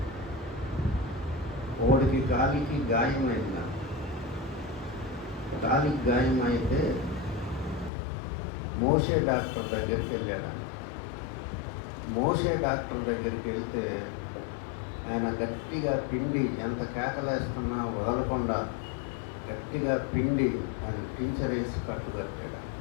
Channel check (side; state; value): right; drops out; at 7.9 s